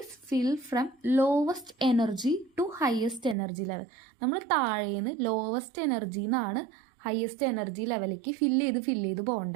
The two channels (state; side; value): drops out; left; at 3.4 s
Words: fill from lowest energy to highest energy level. നമ്മൾ താഴേന്ന് ലോവസ്റ്റ് എനർജിയിൽ നിന്നാണ് ഹയസ്റ്റ് എനർജി ലെവലിലേക്ക് ഫില്ല് ചെയ്ത്